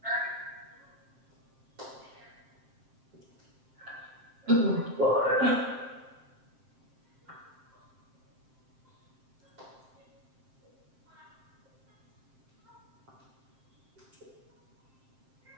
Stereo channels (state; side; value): late; left; 7.6 ms